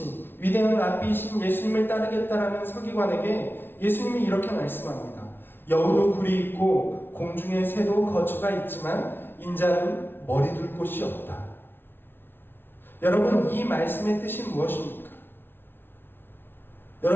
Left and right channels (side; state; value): right; late; 0.11 ms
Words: 위대한 랍비이신 예수님을 따르겠다라는 서기관에게 예수님이 이렇게 말씀합니다. 여우도 굴이 있고 공중의 새도 거처가 있지만 인자는 머리 둘 곳이 없다. 여러분, 이 말씀의 뜻이 무엇입니까?